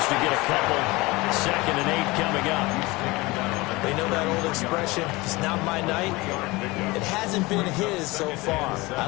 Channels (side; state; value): right; quieter; 22.4 dB